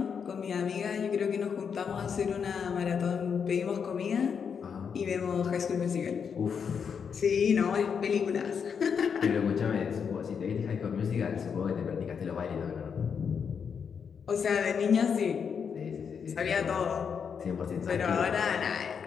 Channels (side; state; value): right; quieter; 6.7 dB